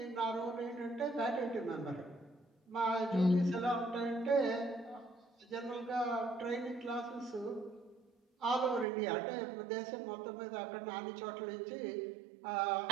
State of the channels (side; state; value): left; drops out; at 8.8 s